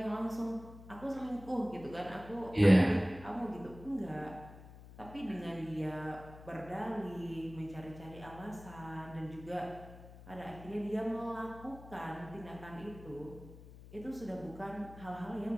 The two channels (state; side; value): noise; left; hum, 16 dB below the sound